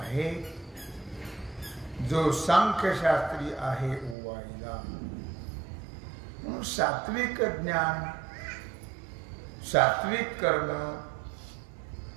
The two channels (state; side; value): drops out; left; at 4.2 s